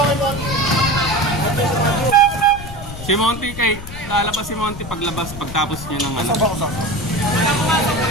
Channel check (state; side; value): noise; left; rumble, 12 dB below the sound